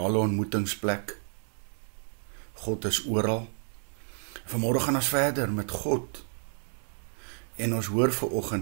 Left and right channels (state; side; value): silent; left; 58 dB below the other